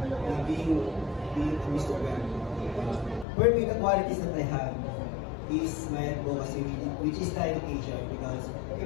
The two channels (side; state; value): right; drops out; at 3.2 s